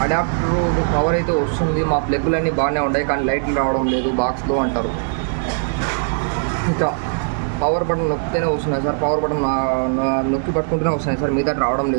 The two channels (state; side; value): silent; left; digital silence